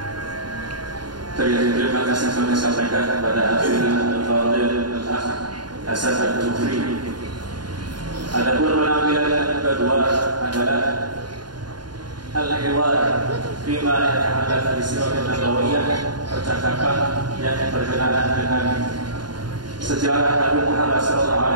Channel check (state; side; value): late; left; 0.71 ms